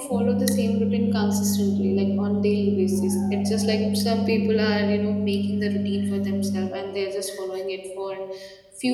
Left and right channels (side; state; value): both; identical; correlation 1.00